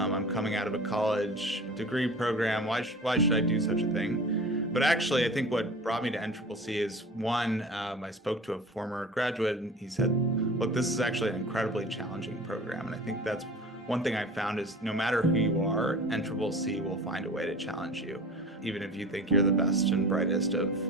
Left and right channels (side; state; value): both; normal; correlation 0.39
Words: coming out of a college degree program. Why should I do such a thing? But actually, I think what brought me to NCCC is one, I spoke to a former graduate and he said, look, this is actually an incredibly challenging program. And I think that's one thing I found is no matter who you are, NCCC will find a way to challenge you, even if you think you're the best and brightest of